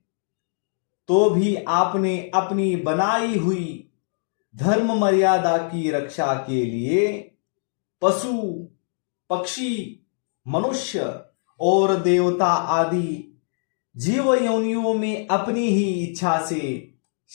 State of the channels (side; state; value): right; silent; digital silence